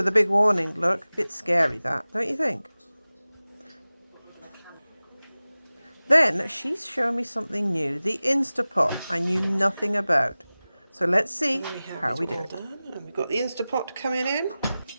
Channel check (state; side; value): inverted; both; correlation -0.97